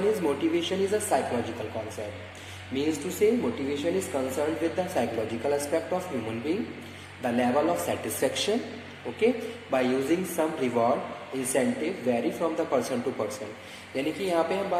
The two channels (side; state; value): both; identical; correlation 1.00